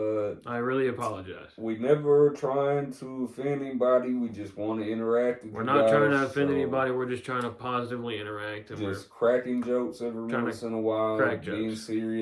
I really apologize. we never trying to offend anybody. We just want to interact with We're you not guys, trying to offend so anybody. We're just trying to positively interact. And Just cracking jokes every Trying to once in a while. crack Being jokes.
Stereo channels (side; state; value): both; identical; correlation 1.00